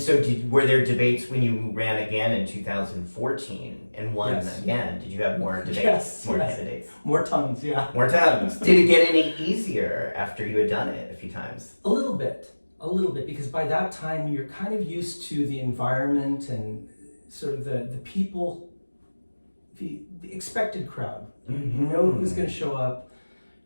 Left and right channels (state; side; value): inverted; both; correlation -1.00